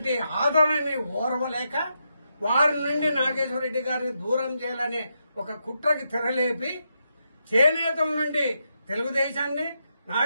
ఆదరణని ఓర్వలేక వారి నుండి నాగేశ్వరరెడ్డి గారిని దూరం చేయాలనే ఒక కుట్రకి తెరలేపి చేనేతల నుండి తెలుగుదేశాన్ని,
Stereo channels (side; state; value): both; inverted; correlation -0.83